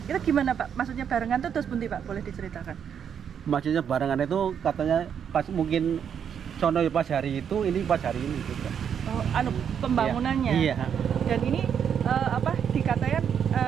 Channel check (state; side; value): quieter; left; 8.0 dB